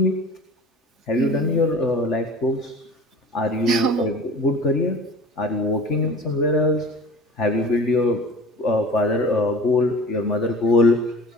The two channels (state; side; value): normal; both; correlation 0.41